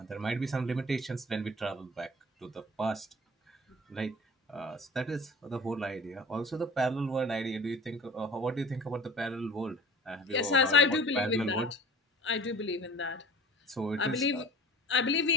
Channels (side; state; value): both; normal; correlation 0.42